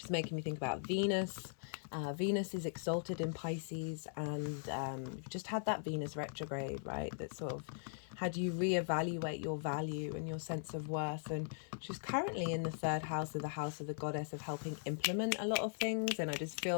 making me think about Venus. Venus is exalted in Pisces, and you've just had that Venus retrograde, right? That sort of had you reevaluate your value and your sense of worth. And she's currently in the 3rd house of the house of the goddess, of helping implement a lot of things. And I just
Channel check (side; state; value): right; silent; 51 dB below the other